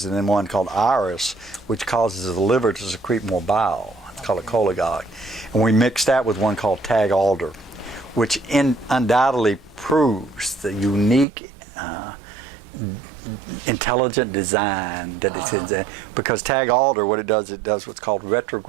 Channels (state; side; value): drops out; left; at 11.2 s